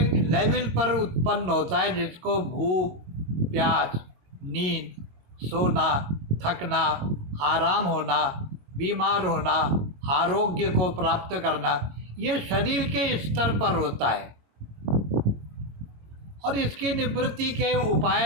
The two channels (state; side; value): late; left; 21 ms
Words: लेवल पर उत्पन्न होता है, जिसको भूख, प्यास, नींद, सोना, थकना, आराम होना, बीमार होना, आरोग्य को प्राप्त करना, ये शरीर के स्तर पर होता है। और इसकी निवृत्ति के